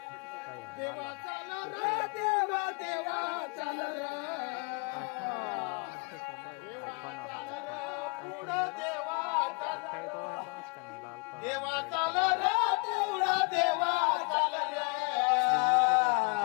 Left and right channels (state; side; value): quieter; right; 34.3 dB